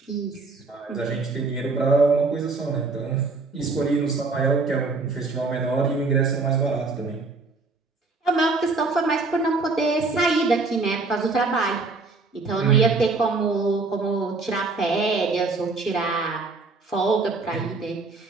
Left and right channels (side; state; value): left; quieter; 3.8 dB